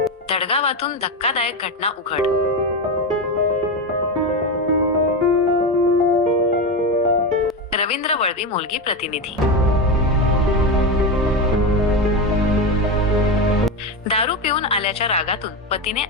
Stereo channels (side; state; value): both; normal; correlation 0.15